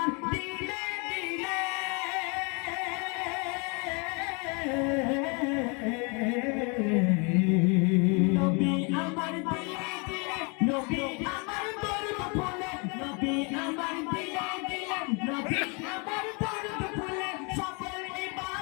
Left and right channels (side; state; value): right; quieter; 32.8 dB